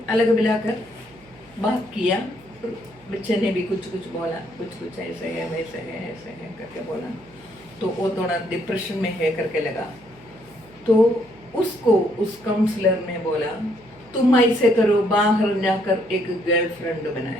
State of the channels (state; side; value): noise; right; hum, 27 dB below the sound